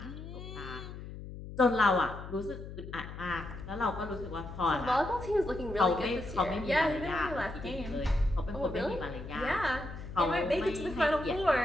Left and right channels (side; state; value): left; noise; hum, 11 dB below the sound